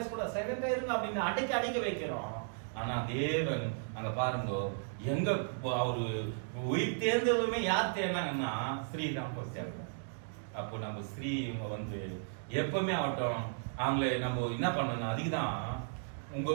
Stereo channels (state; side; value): silent; left; digital silence